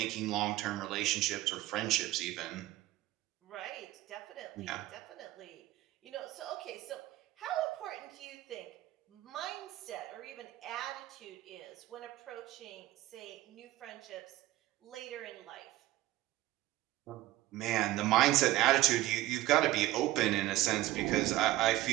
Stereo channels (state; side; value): quieter; left; 15.8 dB